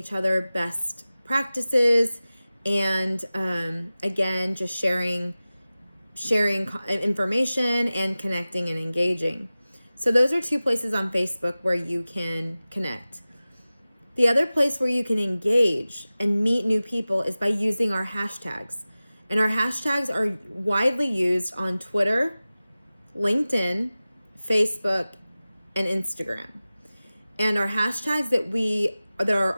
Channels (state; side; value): inverted; both; correlation -0.97